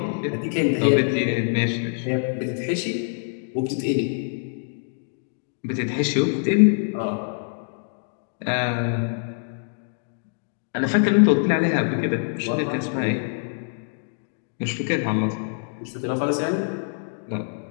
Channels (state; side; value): silent; right; digital silence